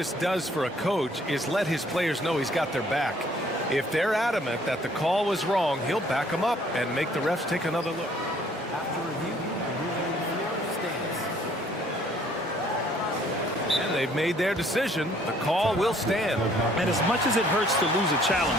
does for a coach is let his players know he's got their back. If they're adamant that the call was wrong, he'll back them up and make the refs take another look. After review, the ruling on the floor stands. And they've made their decision. The call will stand. And as much as it hurts to lose a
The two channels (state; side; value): normal; both; correlation 0.61